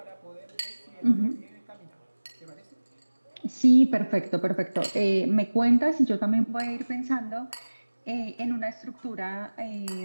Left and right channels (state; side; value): inverted; both; correlation -1.00